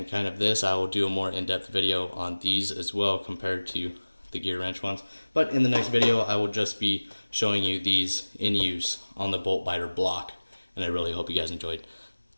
kind of this. I will do a more in-depth video on these as well compared to the Gearwrench ones. But in the next video, I will just be showing you these in use on the bolt biter block, and I really hope you guys enjoyed.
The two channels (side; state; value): both; inverted; correlation -1.00